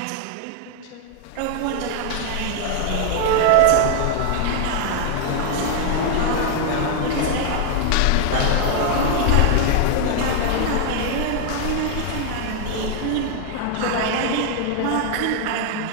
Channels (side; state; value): both; different; correlation 0.00